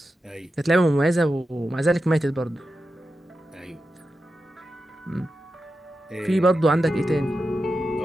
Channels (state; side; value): normal; both; correlation 0.90